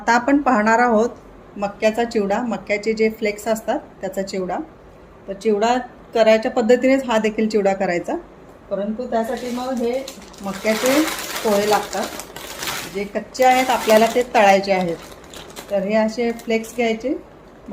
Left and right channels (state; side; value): identical; both; correlation 1.00